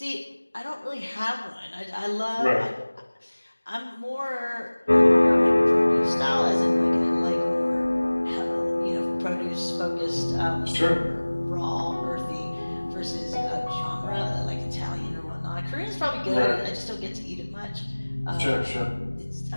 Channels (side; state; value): both; inverted; correlation -1.00